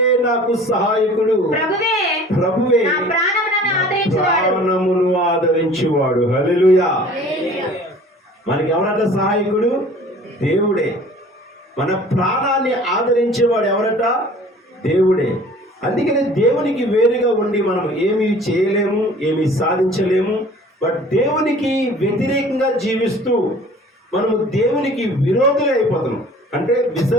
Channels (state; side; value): normal; both; correlation 0.48